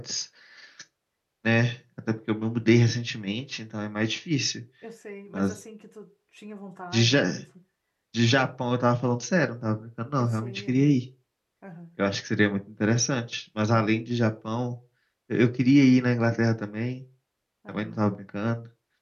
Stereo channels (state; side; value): identical; both; correlation 1.00